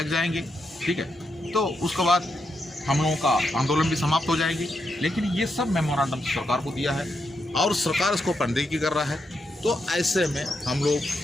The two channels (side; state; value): both; normal; correlation 0.83